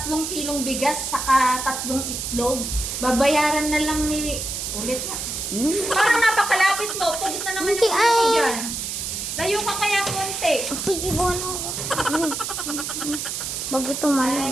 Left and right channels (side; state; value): right; noise; hiss, 4 dB below the sound